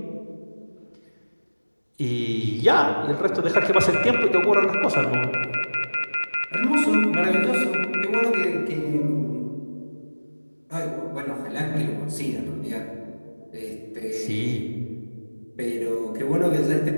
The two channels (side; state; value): both; inverted; correlation -1.00